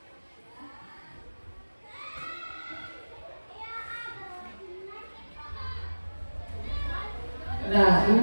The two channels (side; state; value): both; inverted; correlation -1.00